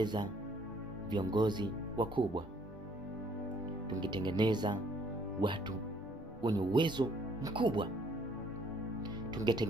viongozi wakubwa, tungetengeneza watu wenye uwezo mkubwa,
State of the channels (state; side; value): normal; both; correlation 0.63